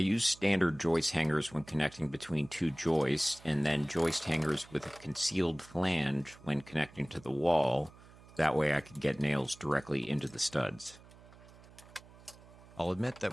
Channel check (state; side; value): noise; right; hum, 22 dB below the sound